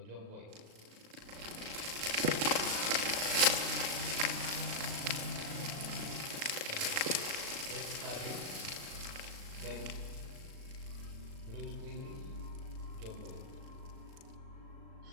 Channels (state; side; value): late; left; 37 ms